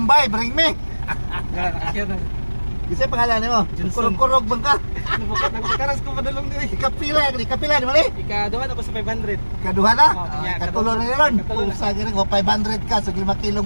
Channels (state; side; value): inverted; both; correlation -1.00